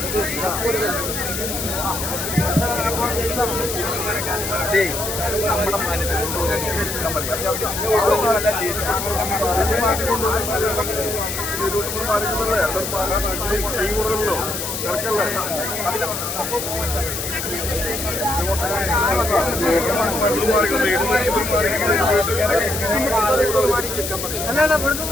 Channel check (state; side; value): noise; left; hiss, 4 dB below the sound